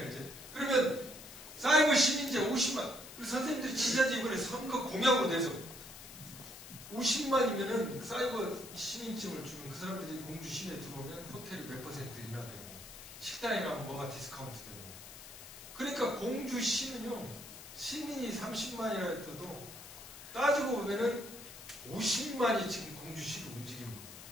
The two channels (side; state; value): left; noise; hiss, 14 dB below the sound